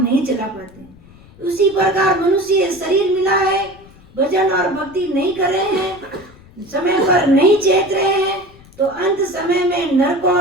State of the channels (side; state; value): left; noise; rumble, 24 dB below the sound